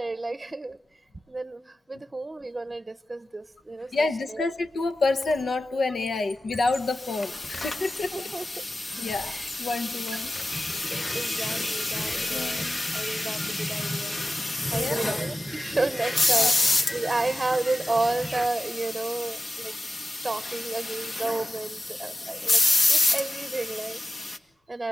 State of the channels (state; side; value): normal; both; correlation 0.93